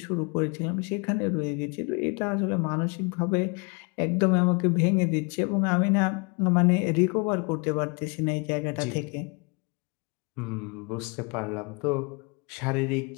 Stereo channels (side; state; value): right; quieter; 32.5 dB